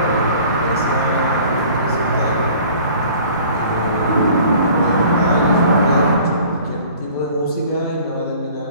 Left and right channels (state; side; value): inverted; both; correlation -0.49